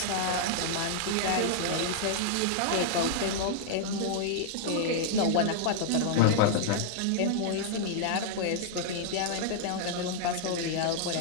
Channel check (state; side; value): different; both; correlation -0.01